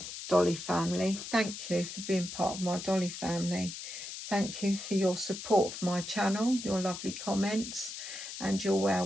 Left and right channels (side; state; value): left; noise; hiss, 9 dB below the sound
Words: Dolly family, thank you for being part of my Dolly family. Thank you for your support of my channel, your lovely comments and your well